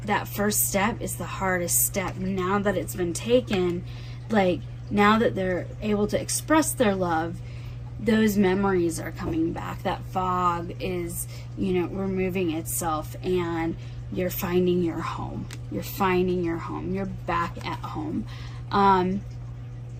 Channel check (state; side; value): identical; both; correlation 1.00